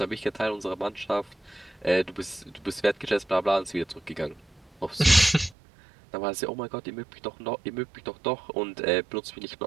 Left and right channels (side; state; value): left; drops out; at 5.6 s